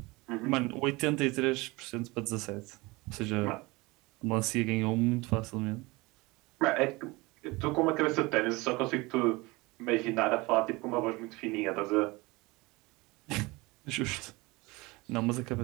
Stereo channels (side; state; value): left; quieter; 23.3 dB